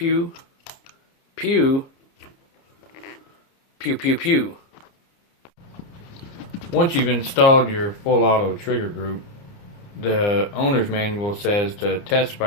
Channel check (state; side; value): late; right; 30 ms